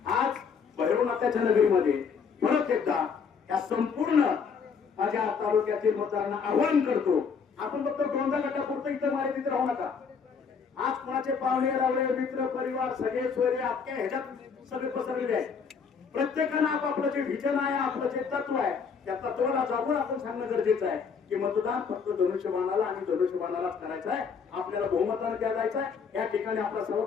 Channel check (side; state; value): right; quieter; 5.9 dB